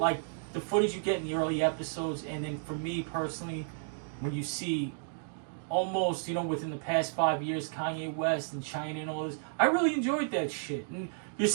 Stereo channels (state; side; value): silent; left; digital silence